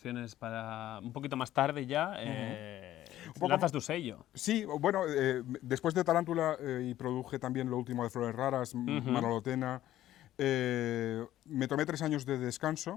para un poquito más tarde ya. Un poco Lanzas tu sello. Sí, bueno, después de Tarántula y produje también lo último de Flores Raras, Manolotena. Me tomé 3 años de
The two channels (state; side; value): quieter; right; 13.5 dB